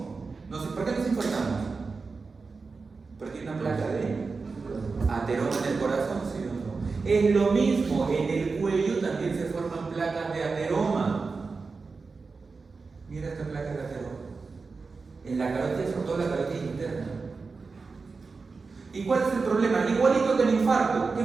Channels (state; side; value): quieter; left; 4.4 dB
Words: no sé, ¿por qué nos importamos? Porque hay una placa de ateroma en el corazón, ¿sí o no? Es lo mismo, en el cuello también se forman placas de ateroma. Mira esta placa de ateroma. En la carótida, sobre todo la carótida interna. ¿Y cuál es el problema? Igualito que el infarto. ¿Qué